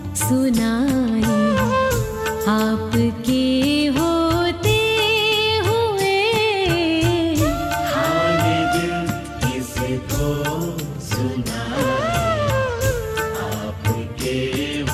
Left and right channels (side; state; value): both; identical; correlation 1.00